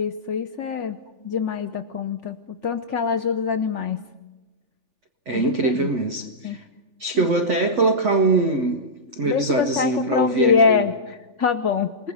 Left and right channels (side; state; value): left; late; 3.4 ms